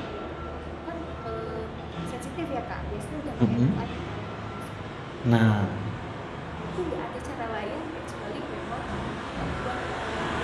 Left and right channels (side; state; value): both; identical; correlation 1.00